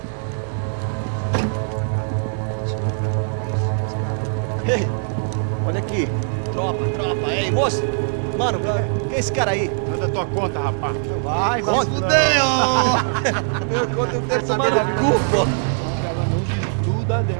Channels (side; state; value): left; silent; digital silence